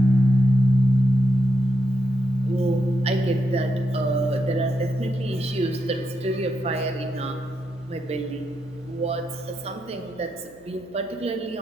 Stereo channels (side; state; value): left; noise; hum, 29 dB below the sound